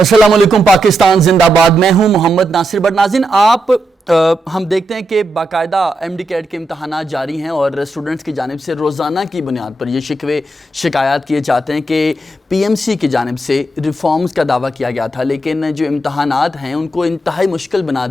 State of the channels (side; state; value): both; normal; correlation 0.84